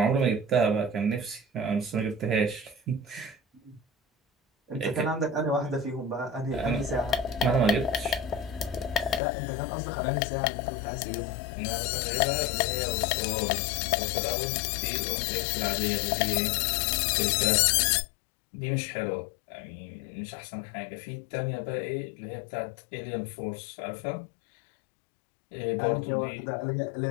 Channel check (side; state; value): right; drops out; at 9.2 s